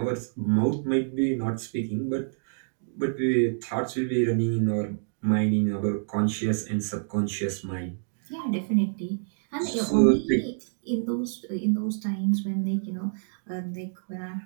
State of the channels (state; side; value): silent; left; digital silence